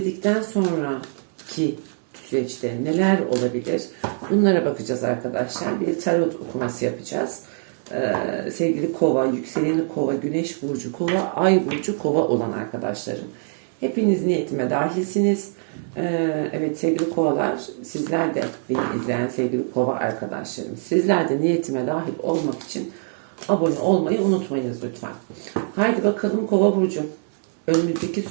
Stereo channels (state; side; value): silent; left; 63 dB below the other